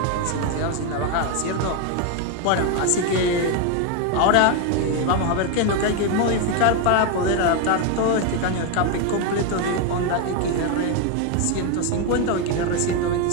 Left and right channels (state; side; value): different; both; correlation 0.01